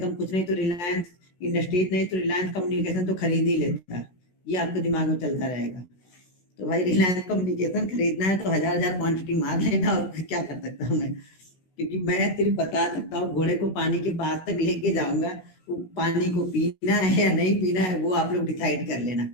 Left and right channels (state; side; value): late; right; 16 ms